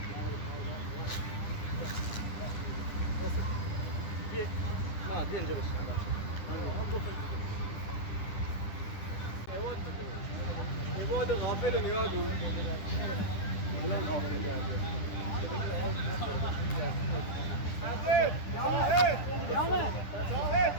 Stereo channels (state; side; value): late; right; 10 ms